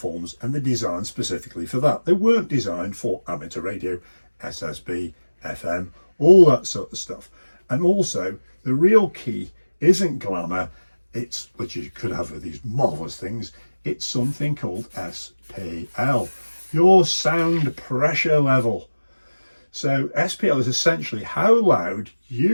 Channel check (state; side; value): inverted; both; correlation -1.00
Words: and they're designed specifically for that. They weren't designed for amateur radio, SSB, FM, all that sort of stuff. And also, the real key isn't glamour, it's, which you could have with these marvellous things, it's something called SPL, your sound pressure level. So SPL is essentially how loud